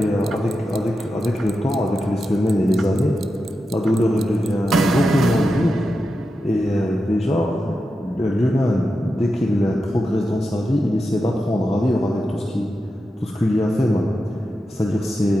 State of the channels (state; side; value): normal; both; correlation 0.89